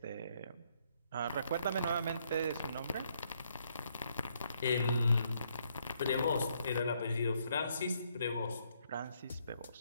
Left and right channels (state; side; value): inverted; both; correlation -0.72